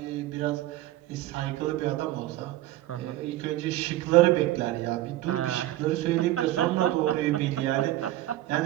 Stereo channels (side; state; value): left; quieter; 15.5 dB